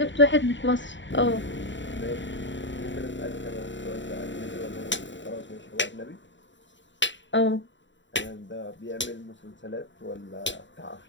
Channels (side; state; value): right; late; 0.54 ms